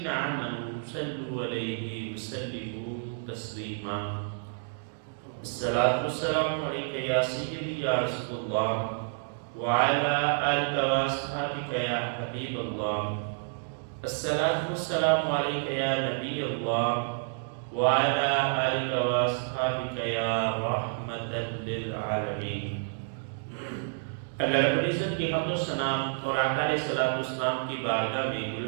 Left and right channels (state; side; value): silent; left; digital silence